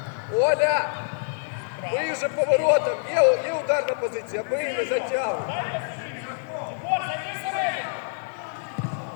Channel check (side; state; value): right; silent; digital silence